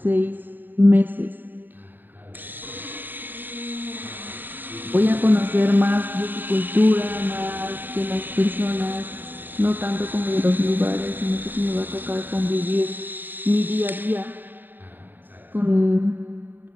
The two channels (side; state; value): left; late; 0.091 ms